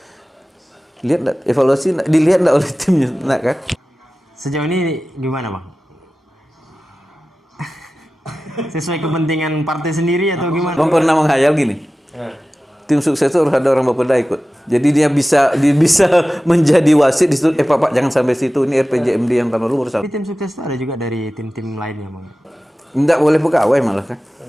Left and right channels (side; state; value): both; normal; correlation 0.95